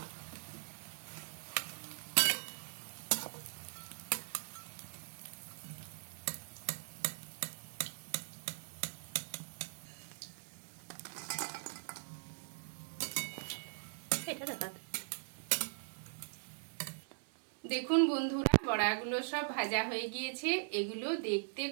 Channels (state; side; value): silent; left; 51 dB below the other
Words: দেখুন বন্ধুরা, বড়াগুলো সব ভাজা হয়ে গিয়েছে। এগুলো দেখতে